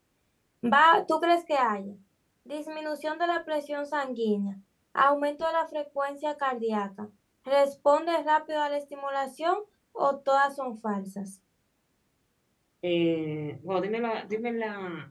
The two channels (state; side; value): identical; both; correlation 1.00